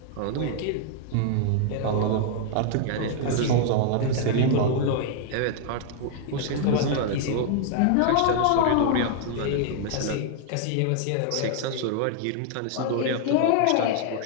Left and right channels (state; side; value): different; both; correlation 0.00